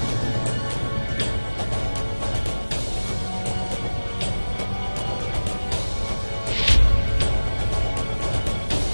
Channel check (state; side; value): inverted; both; correlation -1.00